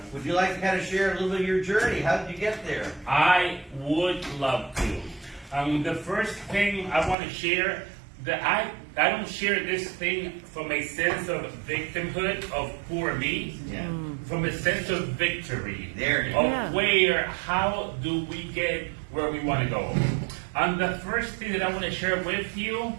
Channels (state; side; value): drops out; left; at 7.2 s